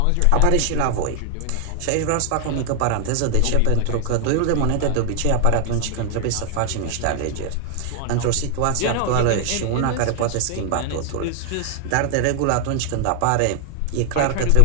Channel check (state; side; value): different; both; correlation 0.00